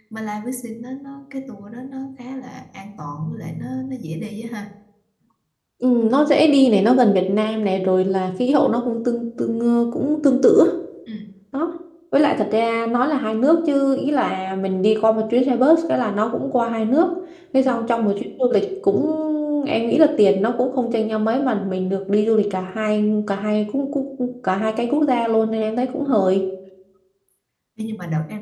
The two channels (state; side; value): identical; both; correlation 1.00